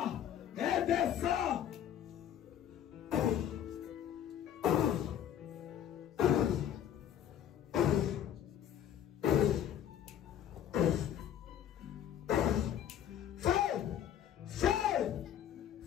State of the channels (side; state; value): right; quieter; 10.1 dB